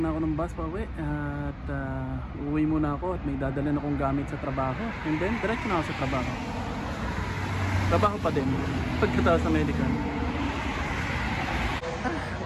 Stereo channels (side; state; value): both; identical; correlation 1.00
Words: na ako ng bus pa uwi at uuwi muna ako at may dadalhin akong gamit sa trabaho and then diretso na ako sa trabaho. Trabaho pa din pagkatapos sa medical.